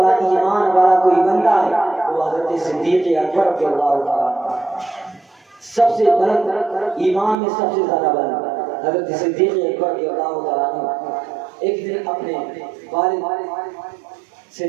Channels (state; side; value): drops out; left; at 7.4 s